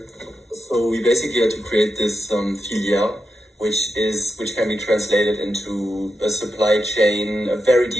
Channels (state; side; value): normal; both; correlation 0.87